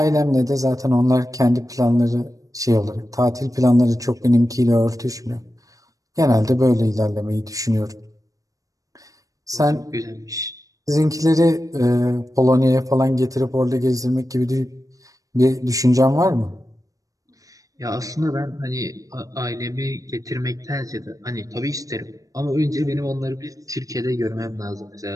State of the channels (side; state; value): left; late; 0.16 ms